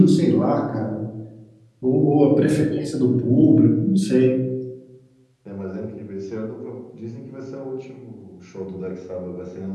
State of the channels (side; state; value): both; identical; correlation 1.00